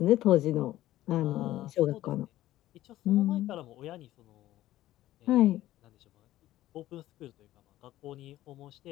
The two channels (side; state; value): right; quieter; 14.7 dB